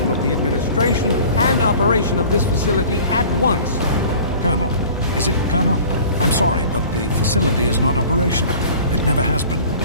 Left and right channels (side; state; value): both; inverted; correlation -0.45